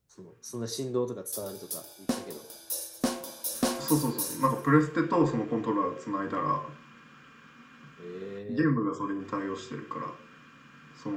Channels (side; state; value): both; identical; correlation 1.00